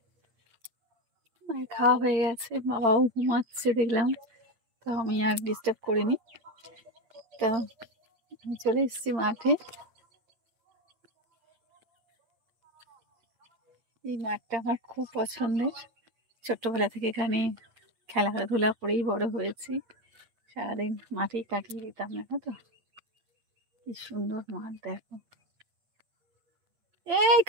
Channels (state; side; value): late; left; 8.7 ms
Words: মায়ের খাওয়া হয়ে গেছে, বাবাও ঘুমাচ্ছে দেখলাম, তো আমি আর ডিস্টার্ব করিনি। তো আমি চলে এসেছি মাঠে। এই মাঠটা আমার খুব পছন্দের, ছোট্টবেলা থেকে এখানে খেলাধুলা করেই বড় হয়েছি, সারাদিন মাঠেই কাটিয়ে দিতাম, না তো। কি সুন্দর মাঠ দেখো, এই